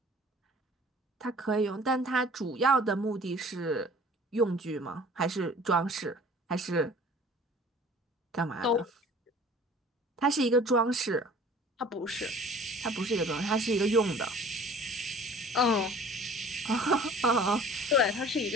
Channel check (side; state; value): both; normal; correlation 0.48